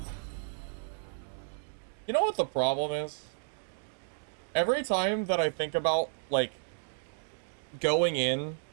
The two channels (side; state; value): left; silent; digital silence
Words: You know what the problem is? Every time that I think about, like, going in